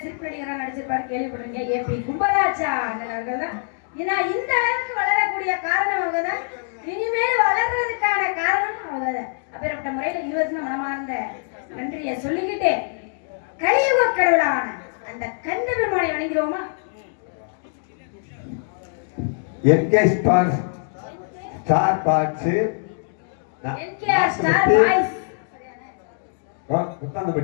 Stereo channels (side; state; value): right; silent; digital silence